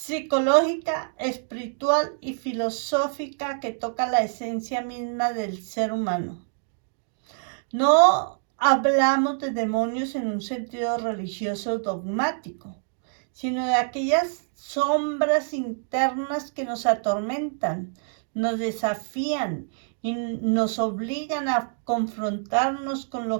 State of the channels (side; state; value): left; silent; digital silence